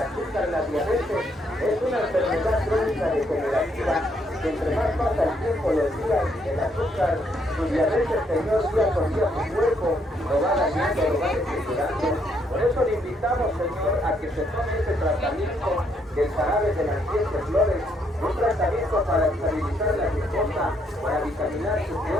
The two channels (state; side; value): normal; both; correlation 0.72